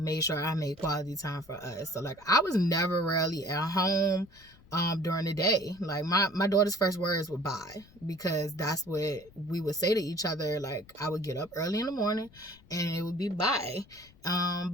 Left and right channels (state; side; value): noise; left; rumble, 25 dB below the sound